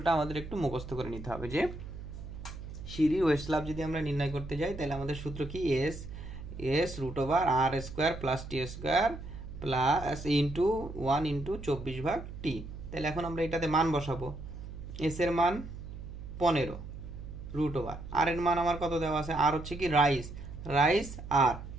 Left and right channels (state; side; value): noise; right; hum, 11 dB below the sound